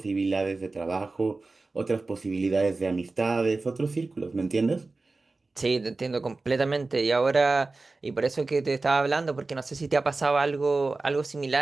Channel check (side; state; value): left; quieter; 3.5 dB